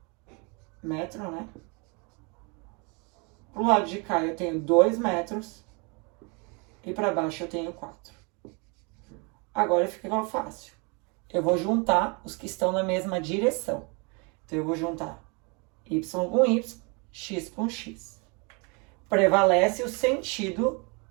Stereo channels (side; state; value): left; quieter; 31.7 dB